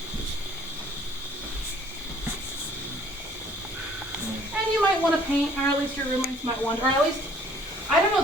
And you might want to paint, or at least your roommates might want, or at least, I don't know,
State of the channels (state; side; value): normal; both; correlation 0.57